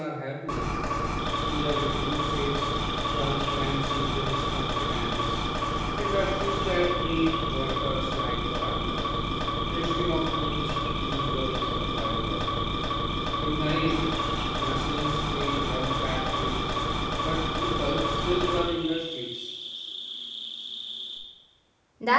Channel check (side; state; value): both; identical; correlation 1.00